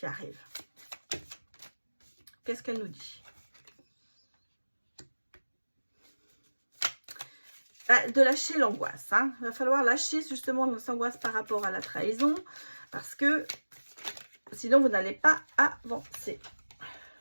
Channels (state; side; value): inverted; both; correlation -1.00